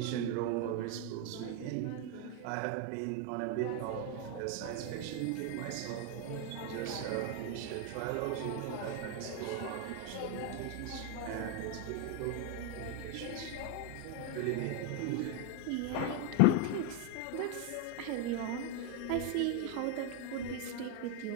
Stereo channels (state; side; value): different; both; correlation 0.01